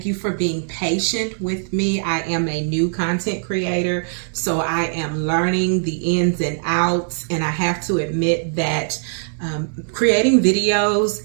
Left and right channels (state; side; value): silent; left; digital silence